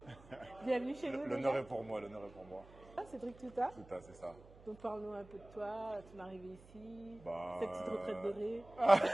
Bienvenue chez nous L'honneur déjà. est pour moi, l'honneur est pour moi. Ah, Cédric Touta. Tout à, c'est ça. Donc parle-nous un peu de toi, ton arrivée ici, Bah, cette petite retraite dorée.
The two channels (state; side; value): noise; right; hum, 22 dB below the sound